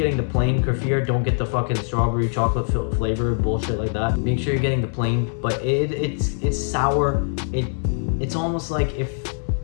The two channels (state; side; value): silent; right; 64 dB below the other